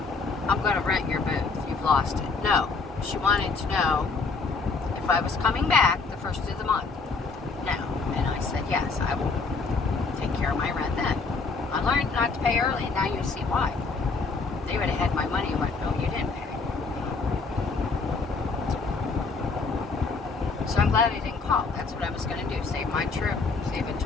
I'm going to rent your booth. You've lost it. No. She wanted to know if I was coming back the first of the month. No. And I said, yes, I will take care of my rent then. I learned not to pay early, and now you see why. They would have had my money and went, no, you didn't pay. So I'm glad I didn't call. That's what I was going to do. Save my trip. Save a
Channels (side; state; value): right; quieter; 4.3 dB